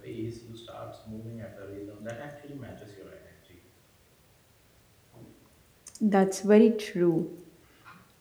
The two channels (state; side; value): identical; both; correlation 1.00